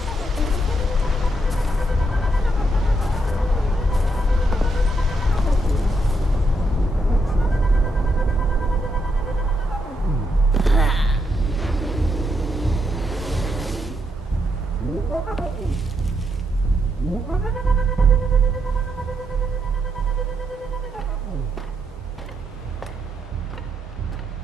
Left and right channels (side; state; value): both; normal; correlation 0.79